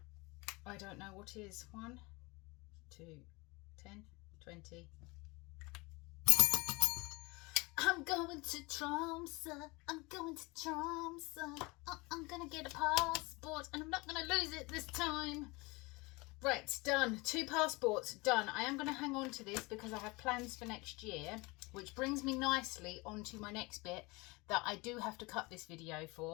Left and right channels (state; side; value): quieter; right; 25.1 dB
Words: I don't know what is. 1, 2, 10, 20. I'm going to Tromsø. I'm going to Tromsø. I'm going to get a passport and I'm not going to lose it this time. Right, done. 2 passports, done. I am going to hang on to this because I have plans for next year, which brings me nicely onto my next bit that I do have to cut this video